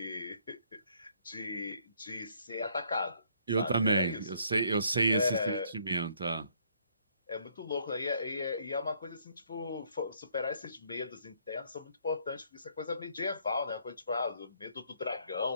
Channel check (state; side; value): inverted; both; correlation -0.66